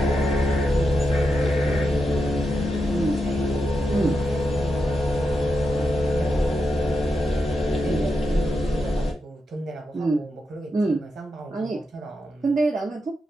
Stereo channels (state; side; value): normal; both; correlation 0.87